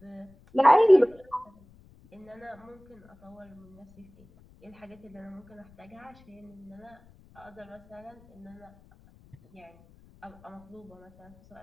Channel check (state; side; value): noise; left; rumble, 26 dB below the sound